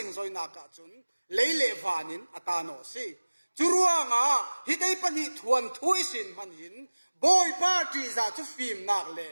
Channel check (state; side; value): inverted; both; correlation -1.00